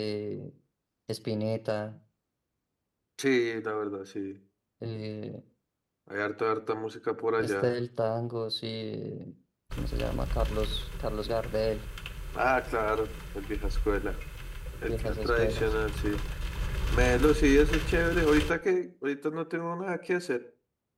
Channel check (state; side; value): identical; both; correlation 1.00